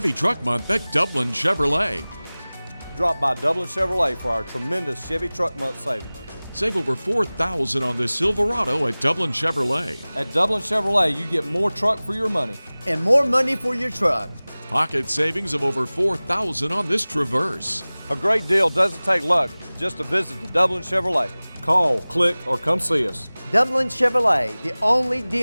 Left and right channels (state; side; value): inverted; both; correlation -0.99